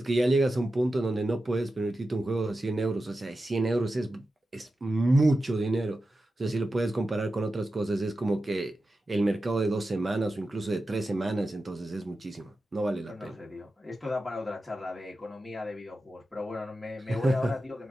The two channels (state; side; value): normal; both; correlation 0.92